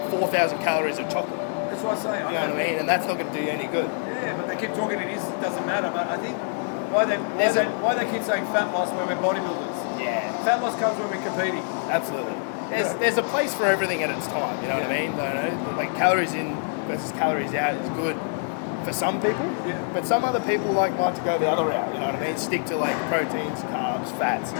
4,000 calories of chocolate. That's what I say. I You know what I mean? And that's not going to do you any good. Yeah, but they keep talking it doesn't matter. But I think why they keep saying fat loss when we're bodybuilders. Yeah. Fat loss comes when we're competing. Absolutely. There's a place for everything at its time. You know what I mean? Like calories in versus calories out is good for some people. Yeah. But some other people like to go the other route. You know what I mean? Stick to like proteins, carbs, fats,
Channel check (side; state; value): right; silent; 61 dB below the other